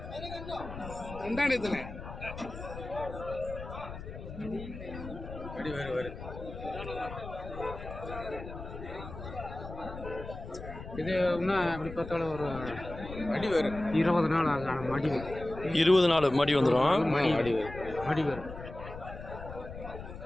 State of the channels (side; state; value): left; noise; rumble, 11 dB below the sound